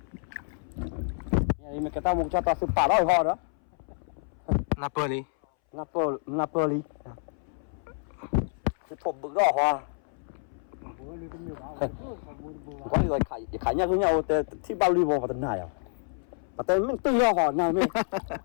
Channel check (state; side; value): silent; right; 59 dB below the other